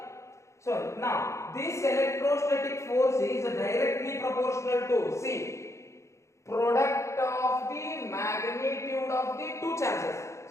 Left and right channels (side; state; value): right; late; 0.14 ms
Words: So now this electrostatic force is directly proportional to, see, product of the magnitude of the two charges.